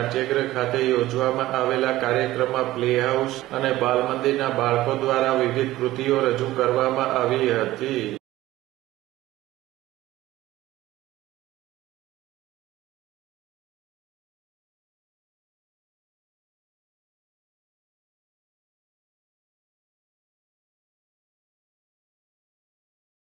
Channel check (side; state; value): left; quieter; 16.2 dB